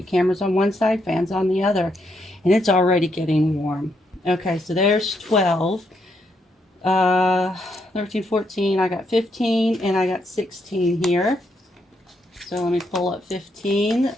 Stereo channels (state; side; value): normal; both; correlation 0.77